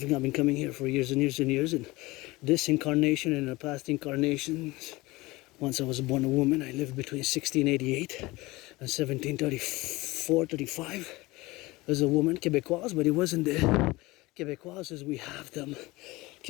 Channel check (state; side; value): quieter; right; 21.2 dB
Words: I've been coming here for years and years and years, and this incarnation and the past incarnations. Once I was born a woman, I lived between 1688 and 1734-35 as a woman, Québécoise, but it wasn't the Québécoise as we have them,